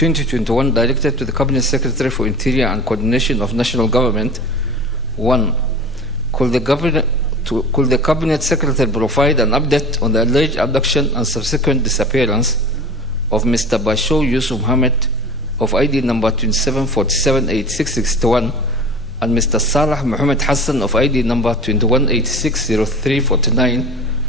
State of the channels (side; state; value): both; normal; correlation 0.37